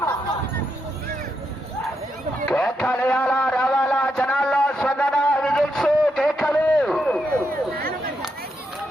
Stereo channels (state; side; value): normal; both; correlation 0.81